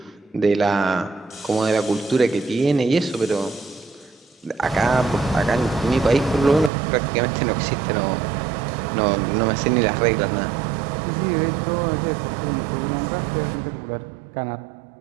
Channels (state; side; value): drops out; left; at 6.7 s